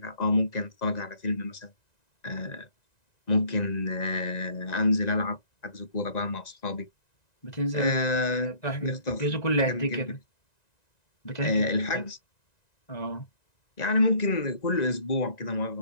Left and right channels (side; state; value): right; late; 1.9 ms